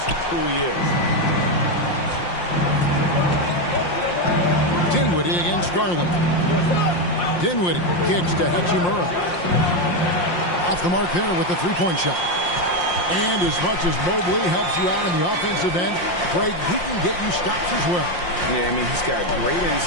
who he is. Dinwiddie against Garland. Dinwiddie kicks to Hachimura. Off the mark there with the three-point shot. And as much as Mobley helps you out in the offensive end, Craig, he can get you stops as well. Yeah, I mean, he's got great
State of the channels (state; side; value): late; right; 5.7 ms